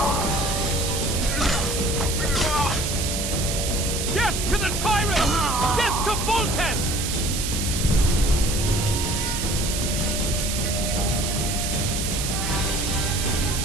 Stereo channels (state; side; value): noise; right; hiss, 3 dB below the sound